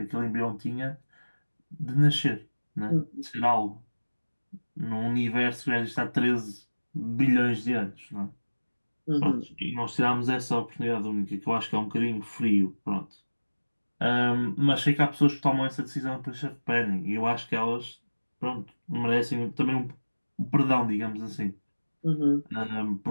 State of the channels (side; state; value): both; inverted; correlation -1.00